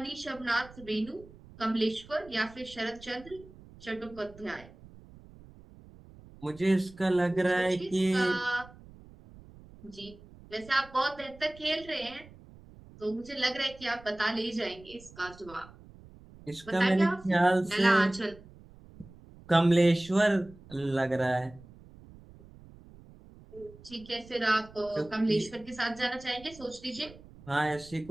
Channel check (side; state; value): right; noise; rumble, 21 dB below the sound